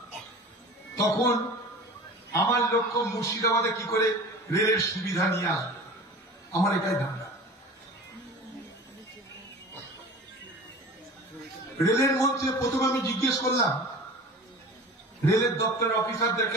তখন আমার লক্ষ্য মুর্শিদাবাদে কি করে রেলের সুবিধা নিয়ে আসবে, আমার এটাই ধান্দা। রেলের মন্ত্রী প্রথমে আমি জিজ্ঞেস করলাম, রেলের দপ্তরের অফিসারদেরকে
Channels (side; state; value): both; normal; correlation 0.38